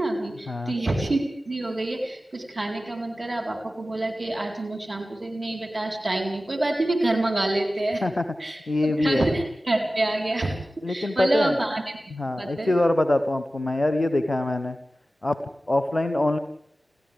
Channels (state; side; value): normal; both; correlation 0.95